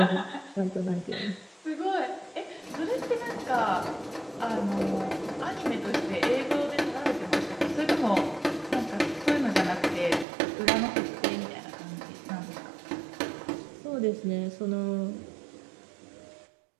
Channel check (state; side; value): drops out; left; at 10.2 s